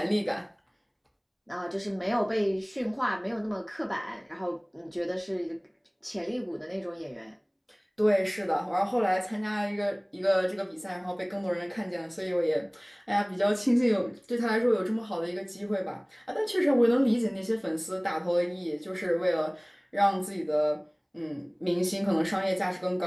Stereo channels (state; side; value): identical; both; correlation 1.00